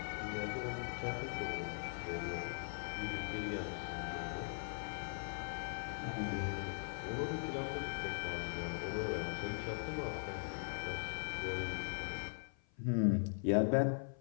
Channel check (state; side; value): silent; right; 51 dB below the other